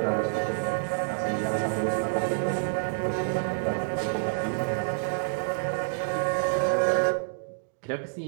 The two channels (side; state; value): left; silent; digital silence